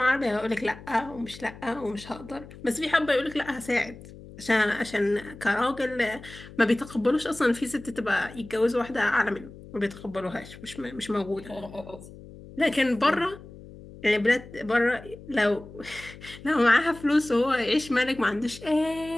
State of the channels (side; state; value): left; noise; hum, 17 dB below the sound